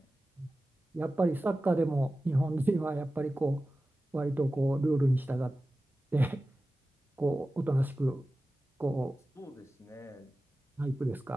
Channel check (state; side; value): normal; both; correlation 0.95